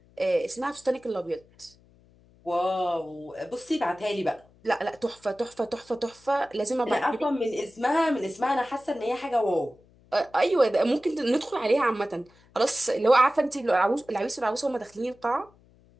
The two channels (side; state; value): left; noise; hum, 29 dB below the sound